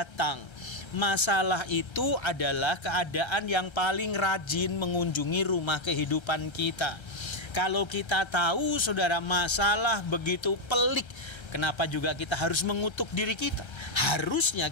Masalah itu adalah keadaan yang paling rajin mengunjungi rumah kehidupan kita. Kalau kita tahu saudara masalah begitu pelik, kenapa juga kita harus mengutuk diri kita? Harusnya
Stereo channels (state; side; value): late; right; 1.3 ms